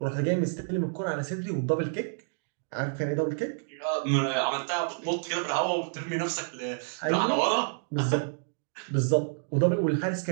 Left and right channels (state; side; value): silent; left; digital silence